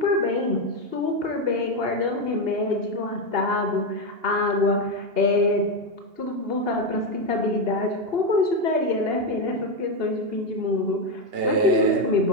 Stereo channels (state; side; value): late; left; 2.8 ms